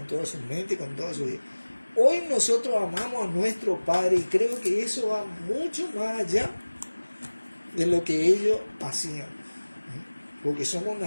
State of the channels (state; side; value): inverted; both; correlation -1.00